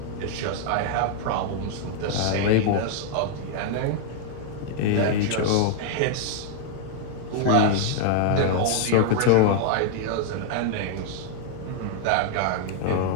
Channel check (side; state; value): both; different; correlation 0.00